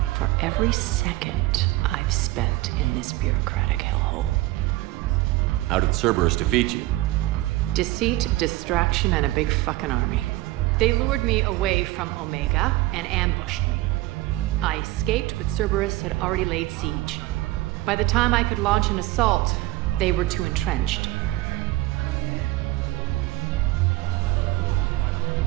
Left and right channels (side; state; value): left; quieter; 18.6 dB